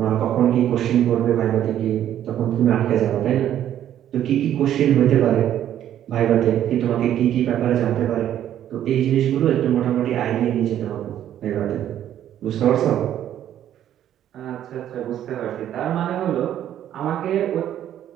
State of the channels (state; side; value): quieter; left; 11.1 dB